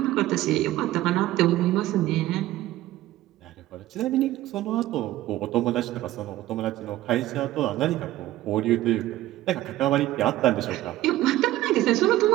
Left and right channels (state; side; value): quieter; left; 15.4 dB